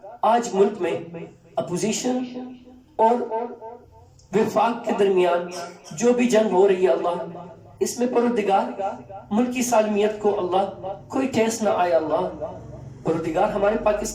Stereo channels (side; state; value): both; identical; correlation 1.00